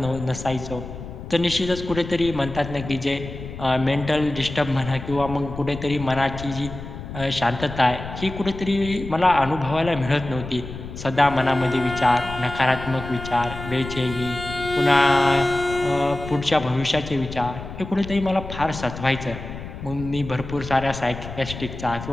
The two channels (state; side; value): noise; left; rumble, 10 dB below the sound